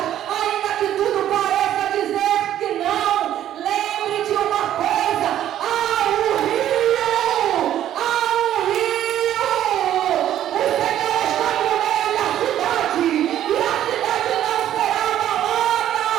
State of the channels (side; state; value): left; quieter; 11.6 dB